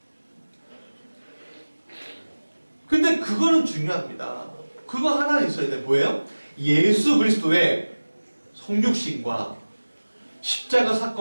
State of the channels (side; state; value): both; inverted; correlation -1.00